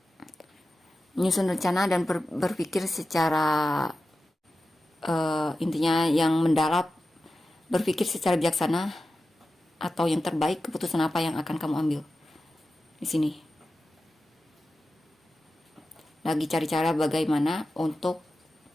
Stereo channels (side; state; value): both; normal; correlation 0.93